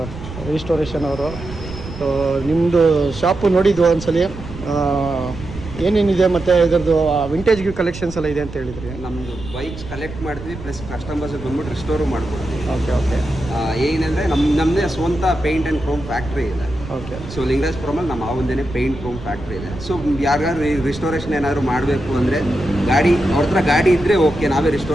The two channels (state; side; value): noise; right; rumble, 12 dB below the sound